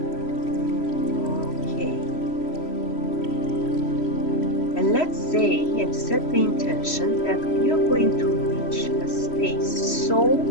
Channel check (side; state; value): right; late; 3.1 ms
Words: Okay. And let's say and set the intention that we are going to reach a space so